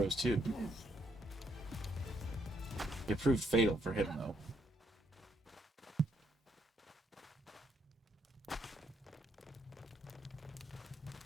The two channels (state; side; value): normal; both; correlation 0.74